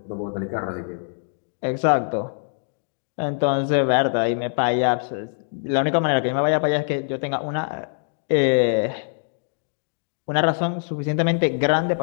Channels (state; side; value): silent; right; digital silence